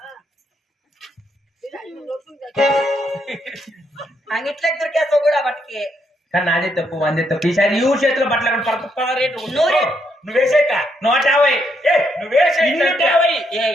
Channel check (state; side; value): normal; both; correlation 0.76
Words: అంగిట్లకి దొరికేస్తావు కూడా బట్టకి కానీ నాదే తప్పు అందే తప్పు ఈసారి ఈ ఊరు చేతిలో బట్టలు రేటు నువ్వేసేక 150 నువ్వేసే